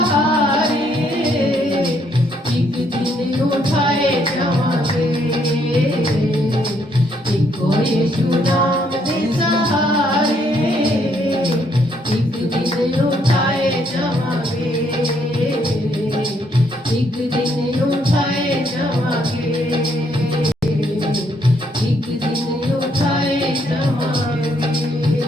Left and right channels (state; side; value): normal; both; correlation 0.71